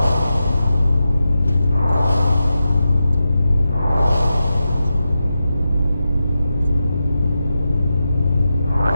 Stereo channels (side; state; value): both; inverted; correlation -0.90